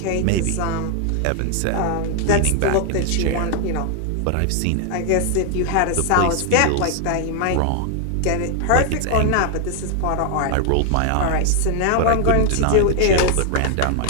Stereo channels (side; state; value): both; different; correlation 0.00